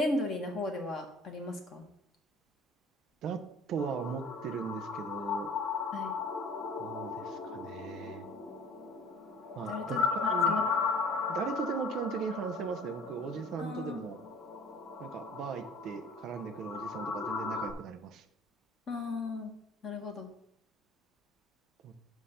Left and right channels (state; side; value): normal; both; correlation 0.47